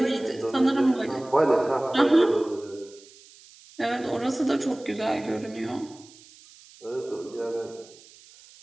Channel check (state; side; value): noise; right; hiss, 23 dB below the sound